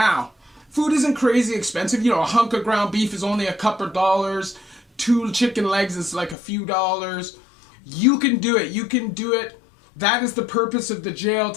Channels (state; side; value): drops out; right; at 6.4 s